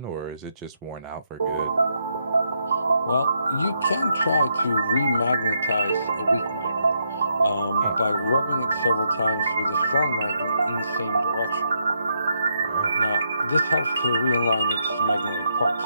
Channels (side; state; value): both; inverted; correlation -0.78